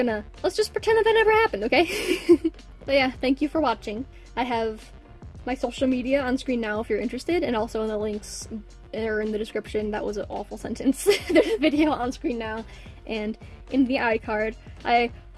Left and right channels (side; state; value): both; identical; correlation 1.00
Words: just pretend that that never happened, okay? But yeah, thank you for watching. I have my social media on screen now if you're interested, and also in the links, or in the description. That was an awful sentence. There's a video on screen now, and in the iCard. I